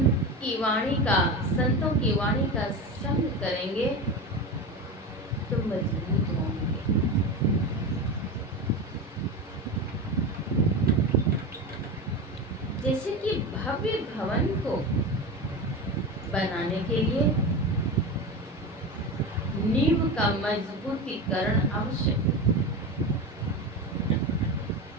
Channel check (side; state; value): both; normal; correlation 0.23